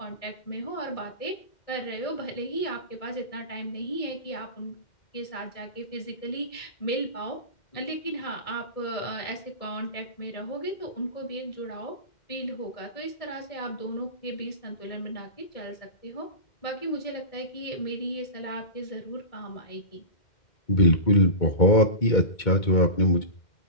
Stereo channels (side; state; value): right; late; 2.1 ms